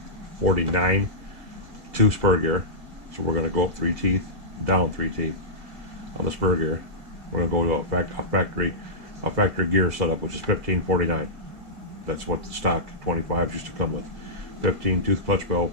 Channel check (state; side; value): late; left; 2.1 ms